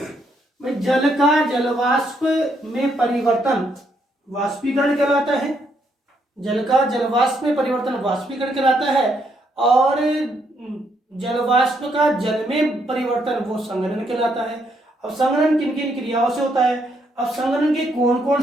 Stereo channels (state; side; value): normal; both; correlation 0.74